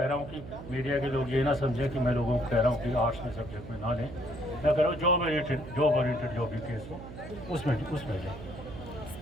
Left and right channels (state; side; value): noise; right; hum, 12 dB below the sound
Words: रहा हूँ कि मीडिया के लोग ये ना समझें कि मैं लोगों को कह रहा हूँ कि आर्ट्स में सब्जेक्ट में ना लें। मैं कह रहा हूँ जॉब ओरिएंटेड जो भी केस हो उसमें जाए।